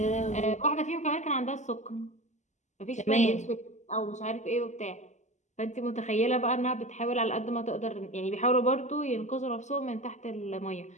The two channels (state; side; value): late; right; 0.34 ms